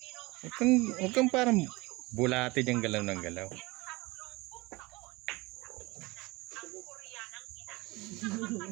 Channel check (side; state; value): left; quieter; 22.7 dB